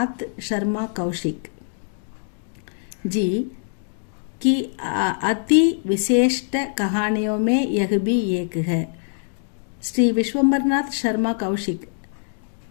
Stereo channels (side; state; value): right; silent; digital silence